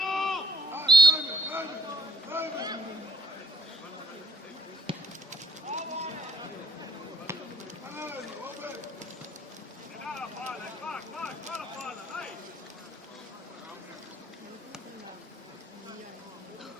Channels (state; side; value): normal; both; correlation 0.64